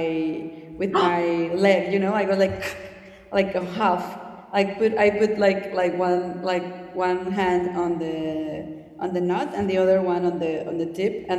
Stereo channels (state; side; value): identical; both; correlation 1.00